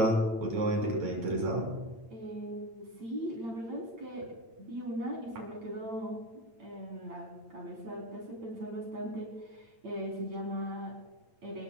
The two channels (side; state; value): left; late; 8.8 ms